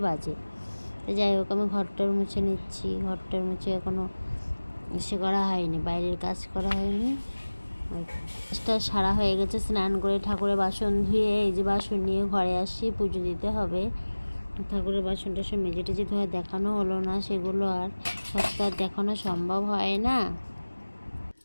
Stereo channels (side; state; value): both; inverted; correlation -1.00